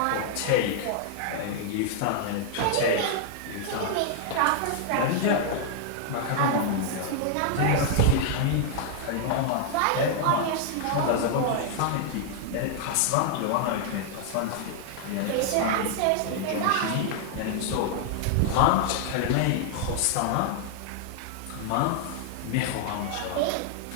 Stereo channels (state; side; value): different; both; correlation 0.00